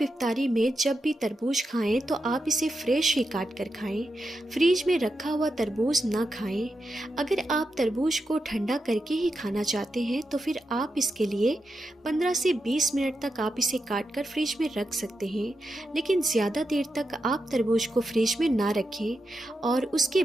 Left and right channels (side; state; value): both; normal; correlation 0.87